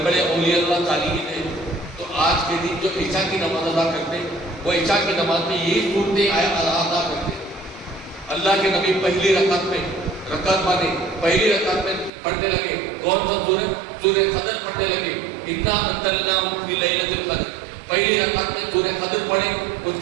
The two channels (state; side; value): drops out; left; at 12.1 s